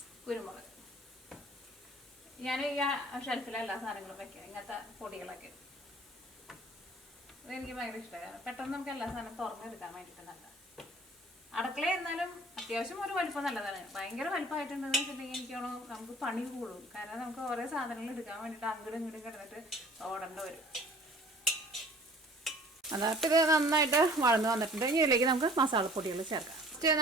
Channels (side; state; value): both; normal; correlation 0.50